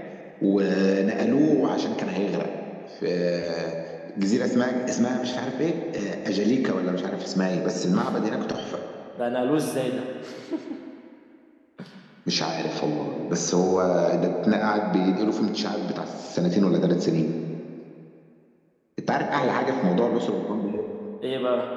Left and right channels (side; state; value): both; identical; correlation 1.00